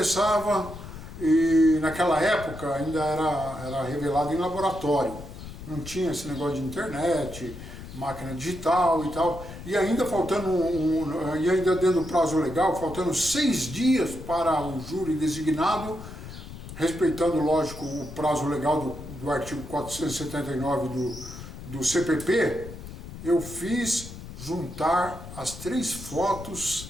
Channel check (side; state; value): left; noise; rumble, 12 dB below the sound